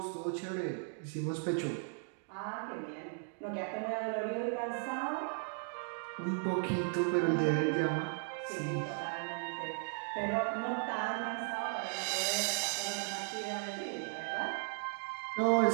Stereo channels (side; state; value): left; silent; 54 dB below the other